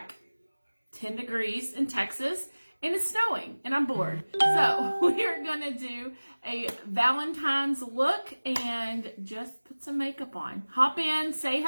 10 degrees in Texas and it's snowing and I'm bored. So we are going to do a Valentine's look and just put some makeup on. Hop in, say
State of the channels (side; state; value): both; inverted; correlation -1.00